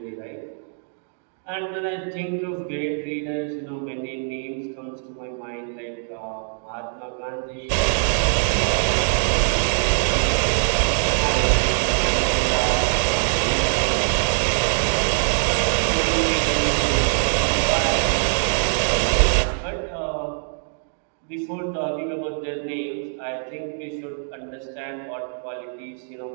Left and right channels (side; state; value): left; silent; digital silence